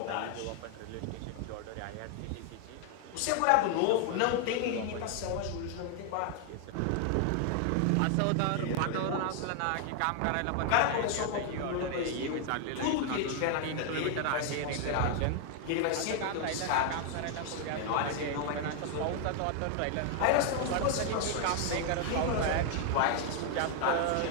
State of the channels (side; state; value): both; different; correlation 0.00